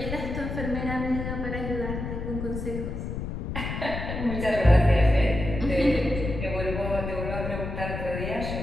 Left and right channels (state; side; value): noise; left; rumble, 5 dB below the sound